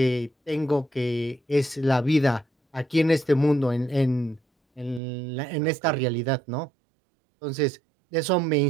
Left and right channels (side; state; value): left; drops out; at 5.0 s